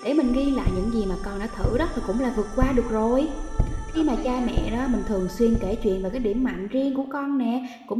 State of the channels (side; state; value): both; identical; correlation 1.00